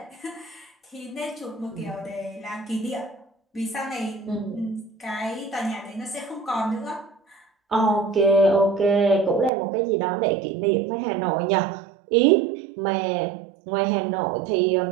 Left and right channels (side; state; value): left; drops out; at 9.5 s